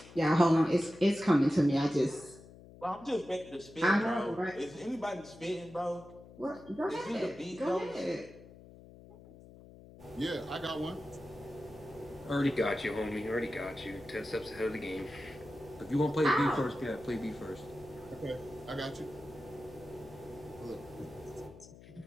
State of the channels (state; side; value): noise; left; hum, 19 dB below the sound